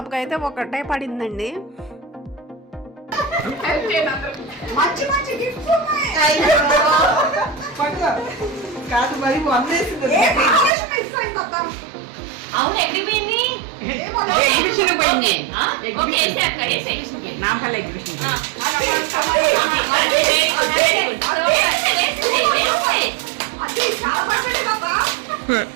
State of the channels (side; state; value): left; drops out; at 10.7 s